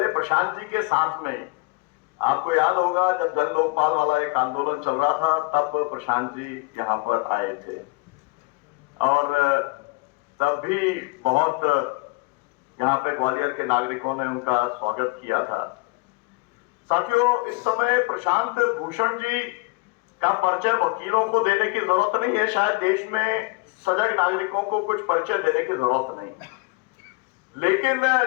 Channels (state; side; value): quieter; right; 27.0 dB